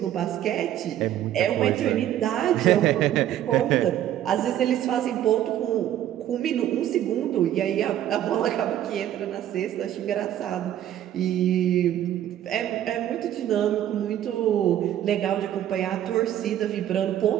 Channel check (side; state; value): left; quieter; 11.6 dB